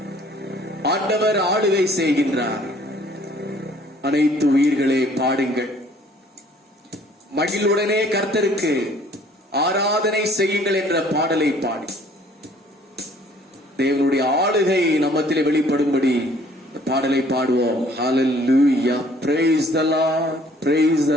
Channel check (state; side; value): normal; both; correlation 0.57